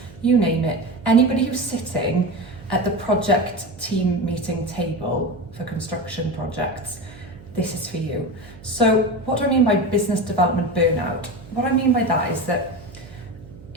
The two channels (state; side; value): noise; right; hum, 20 dB below the sound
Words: you name it. Anybody who's sitting at the project team meeting table for construction projects, this is for you. So what do I mean by business development burnout? What I mean by that is that